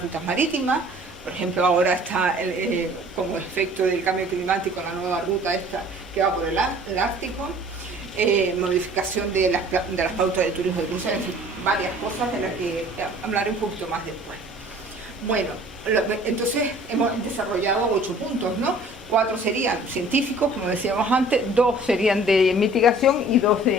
rutas marítimas, por ejemplo ahora está como efecto del cambio climático la nueva ruta esta que va por el Ártico, modificación de las pautas de turismo de cruceros, en fin, varias cosas de las que hablaré un poquito más después. Bueno, entonces hemos desarrollado 8 puntos, ¿no? 4 serían científicos, como decíamos antes, 2 serían de mitigación y 2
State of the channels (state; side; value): normal; both; correlation 0.50